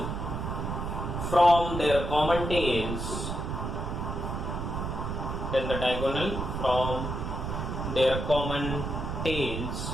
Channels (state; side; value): noise; right; rumble, 3 dB below the sound